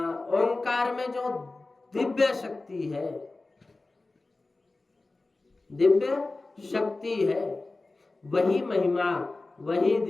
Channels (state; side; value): quieter; right; 3.3 dB